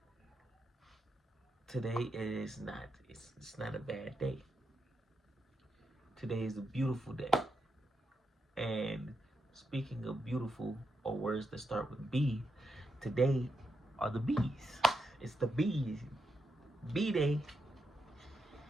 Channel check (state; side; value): normal; both; correlation 0.83